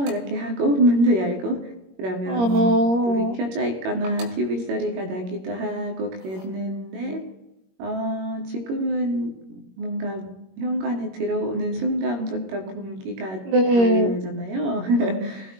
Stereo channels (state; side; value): late; left; 21 ms